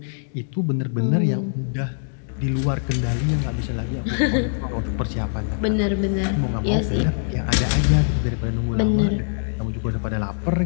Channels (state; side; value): silent; right; digital silence